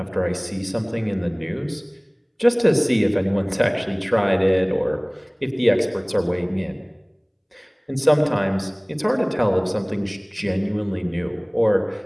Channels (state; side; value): identical; both; correlation 1.00